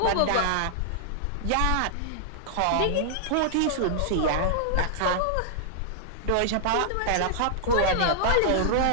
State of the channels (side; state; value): both; different; correlation -0.01